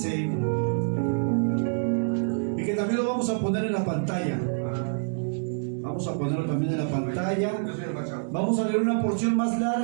y que también lo vamos a poner en la pantalla. Vamos a ponerlo también en la pantalla. Vamos a leer una porción más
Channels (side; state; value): left; silent; digital silence